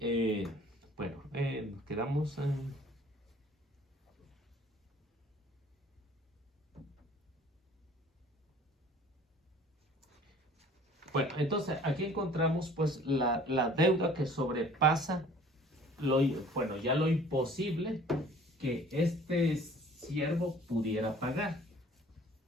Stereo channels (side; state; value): both; normal; correlation 0.51